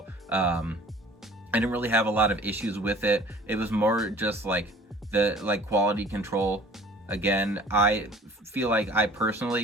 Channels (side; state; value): both; normal; correlation 0.49